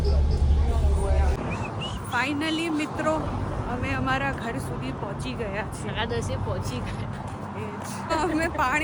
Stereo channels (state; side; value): identical; both; correlation 1.00